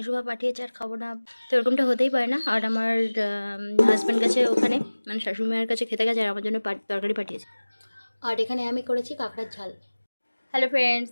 পাঠিয়েছে, আর খাবো না তো এরকমটা হতেই পারে না। আর আমার হাজব্যান্ড গেছে ওখানে, মানে শাশুড়ি মায়ের কাছে খেতে গেছে, আর আমার জন্য তরকারি পাঠিয়েছে। আর এখানে আমি করেছি কাঁকড়ার ঝাল। হ্যালো ফ্রেন্ডস,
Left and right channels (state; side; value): inverted; both; correlation -1.00